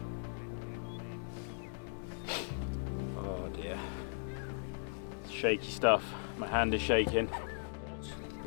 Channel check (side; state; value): right; silent; digital silence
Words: Oh dear. It's shaky stuff. My hand is shaking.